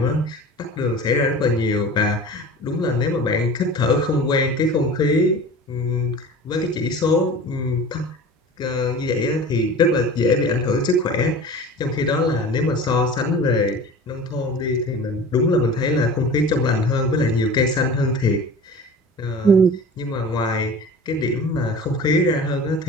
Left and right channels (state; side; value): normal; both; correlation 0.38